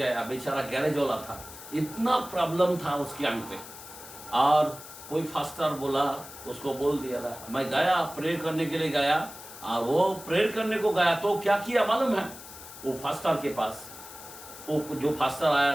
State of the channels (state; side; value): noise; left; hiss, 15 dB below the sound